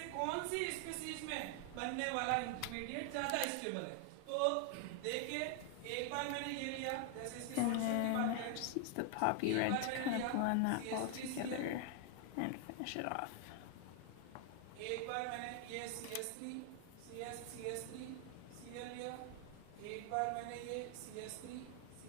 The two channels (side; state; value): both; different; correlation 0.00